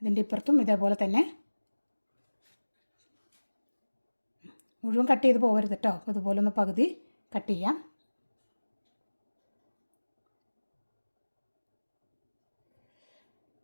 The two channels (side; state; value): both; inverted; correlation -1.00